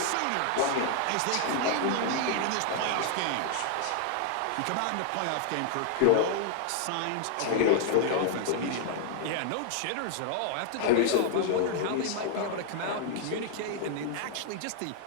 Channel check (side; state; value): both; different; correlation 0.00